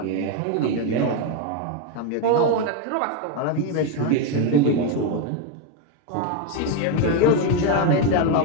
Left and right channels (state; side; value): different; both; correlation 0.02